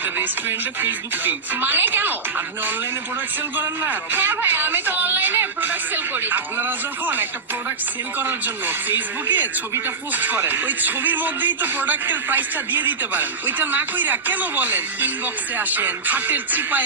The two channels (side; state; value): left; quieter; 4.5 dB